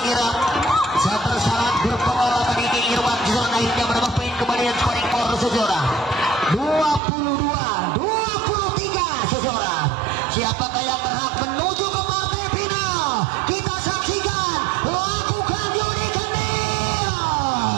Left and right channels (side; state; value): left; drops out; at 7.0 s